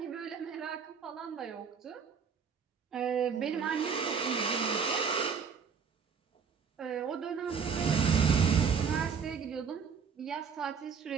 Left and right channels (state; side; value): quieter; left; 6.3 dB